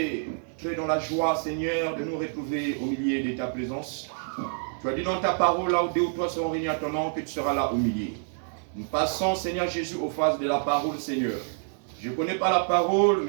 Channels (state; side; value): silent; left; digital silence